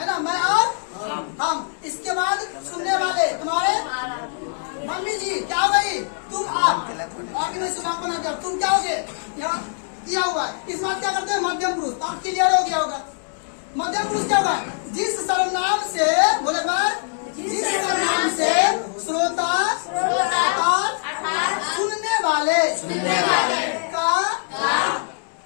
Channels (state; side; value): silent; right; 64 dB below the other